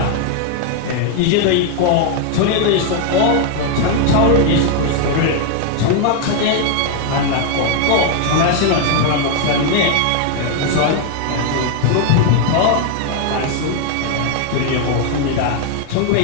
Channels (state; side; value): different; both; correlation 0.00